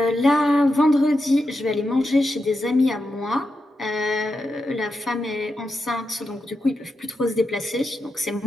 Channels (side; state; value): both; normal; correlation 0.87